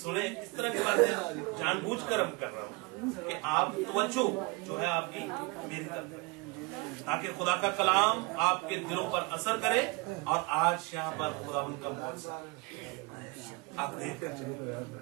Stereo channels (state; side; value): quieter; left; 26.0 dB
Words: इस तरह की बातें जानबूझकर हम कर रहा हूँ कि आप तवज्जो जो है आपकी मेरी तरफ है, ताकि खुदा का कलाम आपके दिलों पर असर करे। और आज यहाँ पर खुदा उनका मौजूद आप देख कर चले,